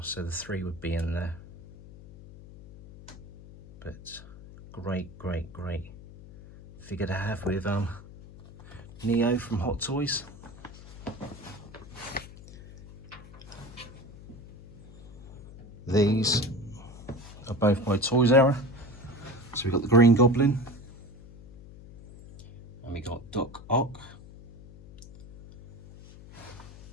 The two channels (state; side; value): noise; left; hum, 17 dB below the sound